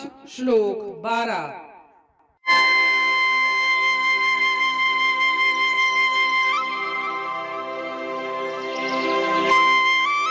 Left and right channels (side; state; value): both; identical; correlation 1.00